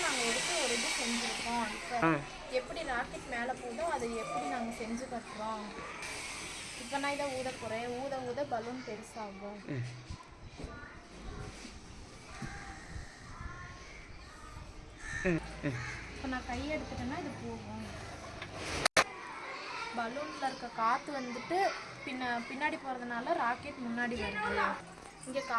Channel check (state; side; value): identical; both; correlation 1.00